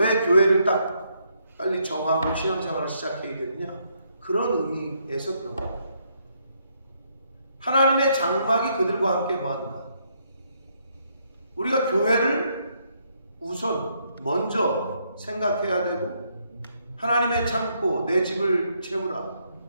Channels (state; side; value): inverted; both; correlation -0.74